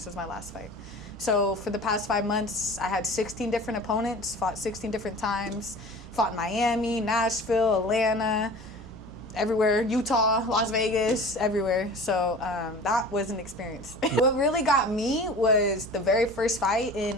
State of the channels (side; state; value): both; normal; correlation 0.40